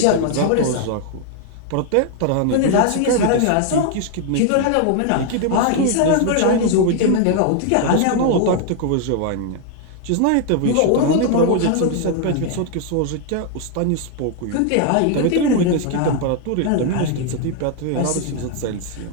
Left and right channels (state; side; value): different; both; correlation 0.00